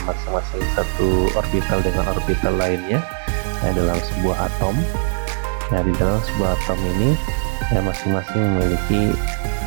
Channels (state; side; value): silent; left; 66 dB below the other